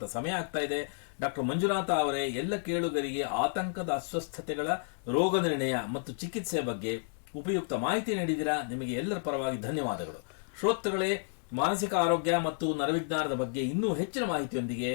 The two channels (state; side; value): silent; right; digital silence